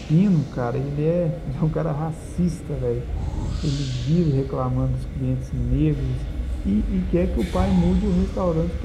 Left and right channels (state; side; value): identical; both; correlation 1.00